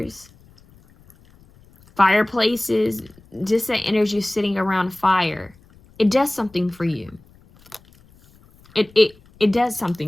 fireplaces, just that energy sitting around fire. It does something for you. It does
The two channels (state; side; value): noise; left; rumble, 28 dB below the sound